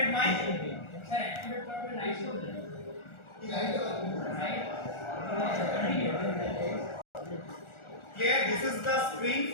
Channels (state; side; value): late; right; 1.4 ms